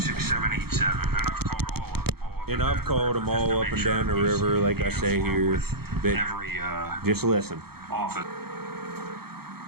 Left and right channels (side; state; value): left; late; 0.95 ms